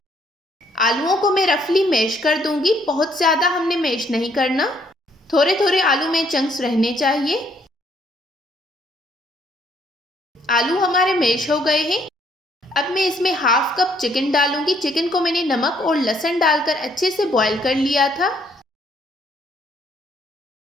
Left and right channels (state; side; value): normal; both; correlation 0.68